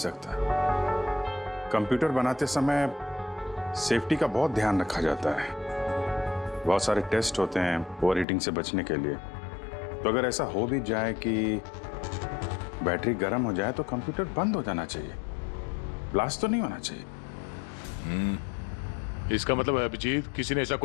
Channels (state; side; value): drops out; right; at 8.2 s